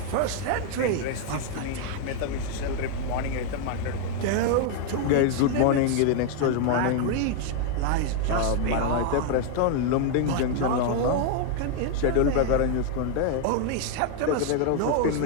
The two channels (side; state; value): both; different; correlation 0.00